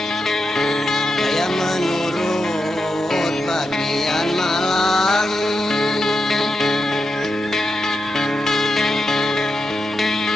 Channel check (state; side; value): normal; both; correlation 0.87